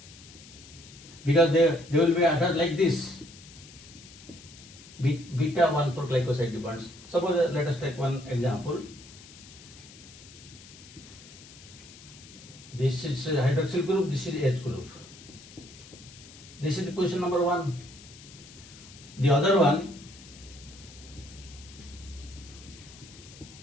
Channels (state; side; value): noise; left; hiss, 19 dB below the sound